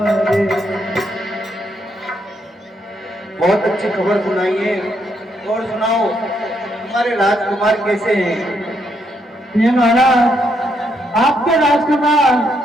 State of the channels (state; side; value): normal; both; correlation 0.76